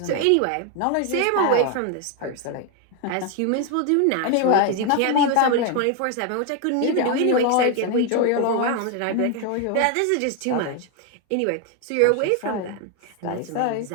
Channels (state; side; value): different; both; correlation 0.01